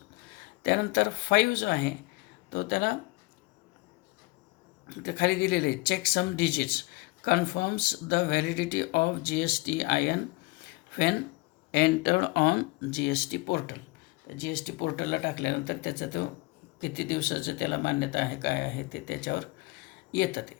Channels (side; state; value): right; quieter; 25.0 dB